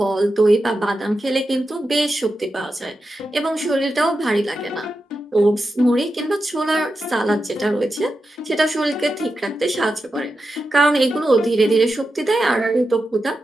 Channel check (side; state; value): both; normal; correlation 0.90